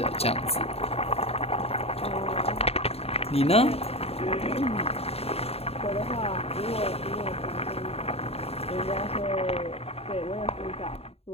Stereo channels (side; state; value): right; late; 0.29 ms